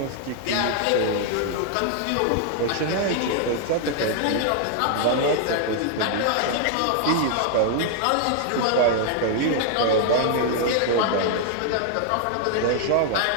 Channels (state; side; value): different; both; correlation 0.00